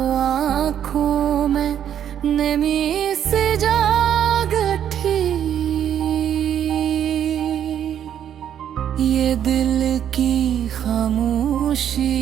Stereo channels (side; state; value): left; quieter; 9.7 dB